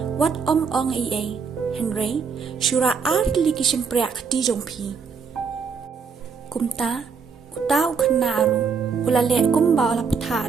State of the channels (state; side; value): quieter; left; 5.7 dB